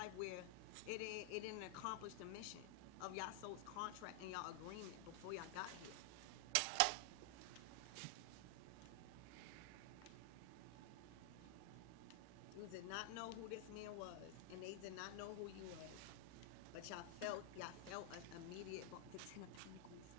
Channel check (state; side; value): different; both; correlation 0.00